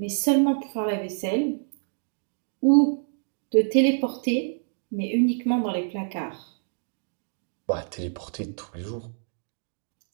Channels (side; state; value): left; silent; digital silence